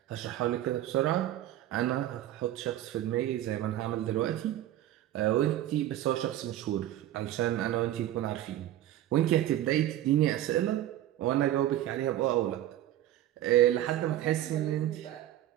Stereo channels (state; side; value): quieter; left; 13.3 dB